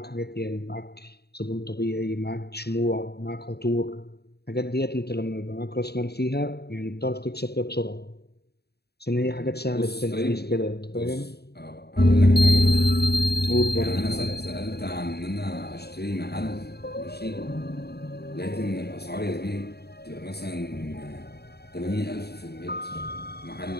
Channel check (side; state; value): right; late; 0.47 ms